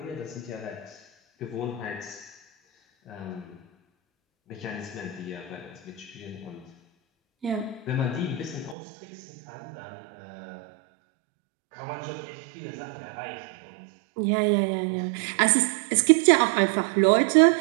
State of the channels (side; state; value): left; drops out; at 8.8 s